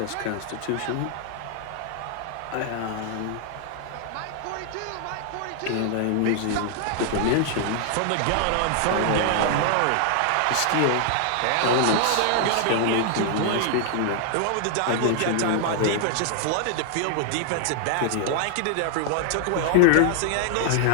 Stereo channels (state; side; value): different; both; correlation 0.00